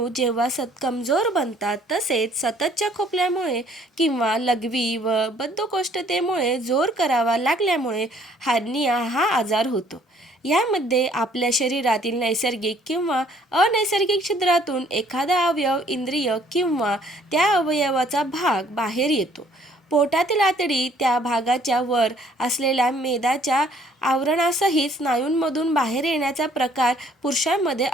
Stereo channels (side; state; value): both; normal; correlation 0.60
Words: जेव्हा कमजोर बनतात, तसेच सततच्या खोकल्यामुळे किंवा लघवी व बद्धकोष्ठतेमुळे जोर करावा लागल्यामुळे हर्निया हा आजार होतो. यामध्ये आपल्या शरीरातील नैसर्गिक किंवा अनैसर्गिक छिद्रातून एखादा अवयव, इंद्रिय किंवा त्या अवयवाचा भाग बाहेर येतो. पोटातील आतडी त्या भागाच्या वर असलेल्या मेदाच्या आवरणासहित स्नायूंमधून बाहेर येण्याचा प्रकार पुरुषांमध्ये